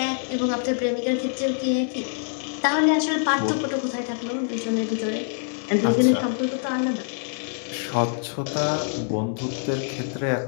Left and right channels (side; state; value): right; silent; digital silence